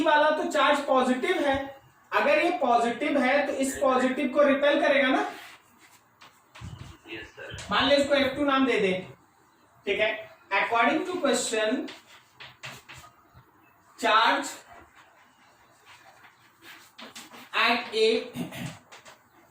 वाला तो चार्ज पॉजिटिव है, अगर ये पॉजिटिव है तो इस पॉजिटिव को रिपेल करेगा ना। Yes sir. मान लो इसको F2 नाम दे दे। ठीक है। According to question, charge at A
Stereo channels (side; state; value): both; identical; correlation 1.00